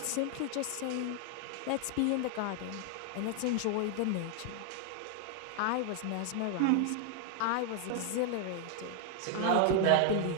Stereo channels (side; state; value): both; different; correlation 0.00